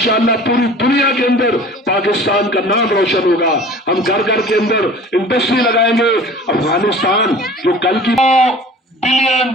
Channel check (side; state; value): both; normal; correlation 0.43